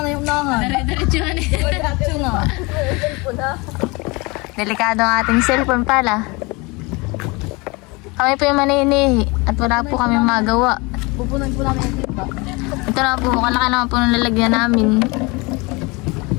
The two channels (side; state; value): right; quieter; 26.3 dB